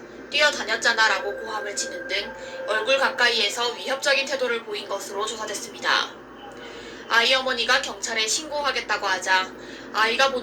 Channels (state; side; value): identical; both; correlation 1.00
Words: 뛰어다녔잖아 라고 고함을 치는 등 얼굴 가까이에서 위협적인 태도를 보인 것으로 조사됐습니다. 아이 어머니가 경찰에 신고하겠다고 하자 아이가